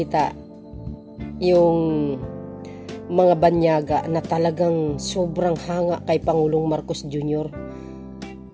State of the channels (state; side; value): identical; both; correlation 1.00